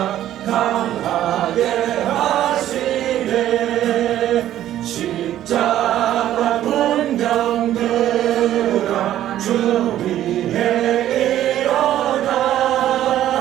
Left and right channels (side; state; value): left; quieter; 12.4 dB